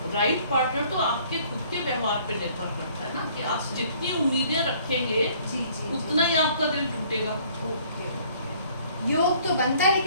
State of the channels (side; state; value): both; inverted; correlation -0.58